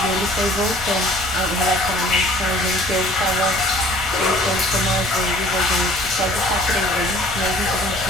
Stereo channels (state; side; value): normal; both; correlation 0.51